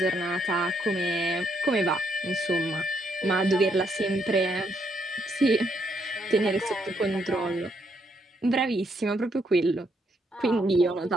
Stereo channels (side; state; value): both; normal; correlation 0.74